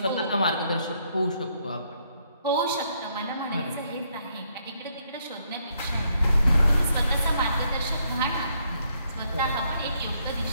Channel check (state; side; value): inverted; both; correlation -0.73